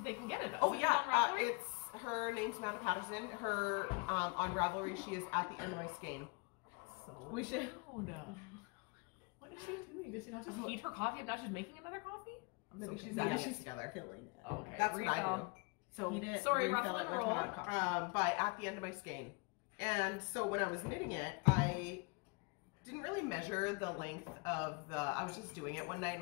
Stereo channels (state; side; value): quieter; right; 31.1 dB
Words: they can get it. Oh yeah, it's her name's Amanda Patterson. Her on Ravelry, she is at the end of my skein. So we should. What is she doing? Does she not just heat her coffee and not just making another coffee? Maybe she's adding it together. Filling it. Okay, that's what I do. So heat it. Sorry, ruffle and roll. By at the end of my skein, and so when I was knitting it, I didn't really measure the length of the. I was just doing it one night